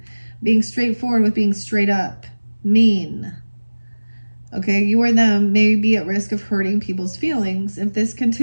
being straightforward with being straight up. Mean. Okay, you or them may be at risk of hurting people's feelings. If this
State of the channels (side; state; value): both; inverted; correlation -1.00